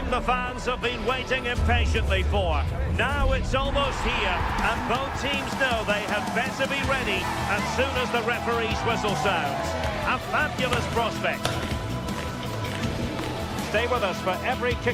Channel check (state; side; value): identical; both; correlation 1.00